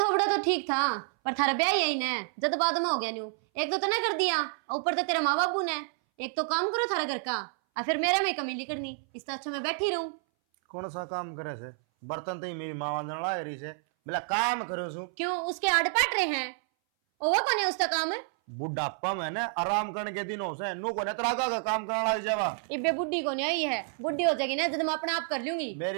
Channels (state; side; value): silent; left; 58 dB below the other